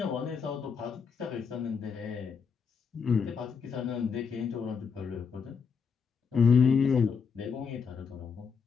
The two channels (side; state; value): right; quieter; 6.0 dB